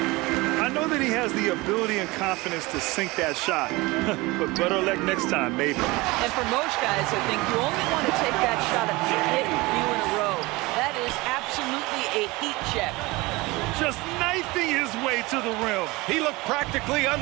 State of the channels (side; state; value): left; quieter; 22.5 dB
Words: I know that he has the ability and confidence to sink that shot. But better luck next time, maybe. And for most guys, I think you only want to take that shot if you hit a few in a row. That is absolutely a heat check. Just knifing his way to the rim. He looked practically